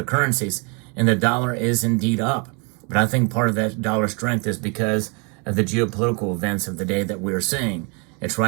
currencies. And the dollar is indeed up. But I think part of that dollar strength is because of the geopolitical events of the day that we're seeing. It's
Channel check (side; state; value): left; quieter; 33.2 dB